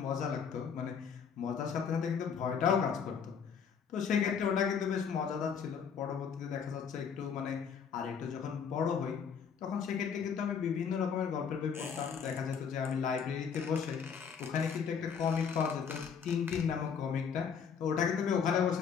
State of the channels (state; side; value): quieter; right; 6.8 dB